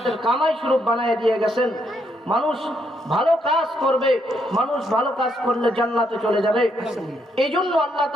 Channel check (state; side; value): normal; both; correlation 0.76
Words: কামাই স্বরূপ বানায় দিয়ে গেছেন। মানুষ ভালো কাজ করবে, মানুষ ভালো কাজ করলে জান্নাতে চলে যাবে। এই জন্য আল্লাহ